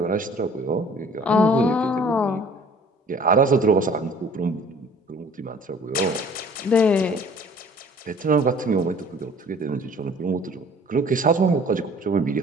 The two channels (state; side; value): normal; both; correlation 0.51